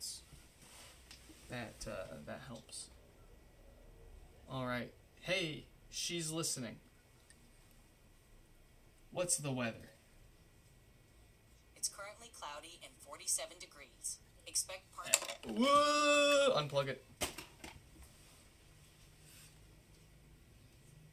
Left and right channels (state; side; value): identical; both; correlation 1.00